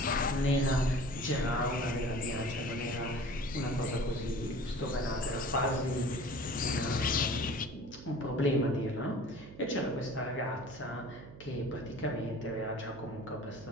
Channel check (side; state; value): right; noise; hum, 16 dB below the sound